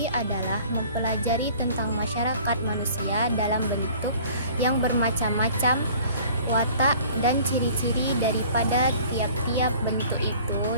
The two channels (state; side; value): inverted; both; correlation -0.49